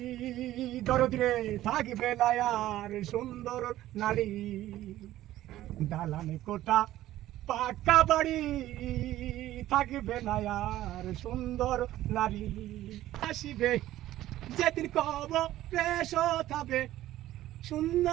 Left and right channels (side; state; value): left; quieter; 14.4 dB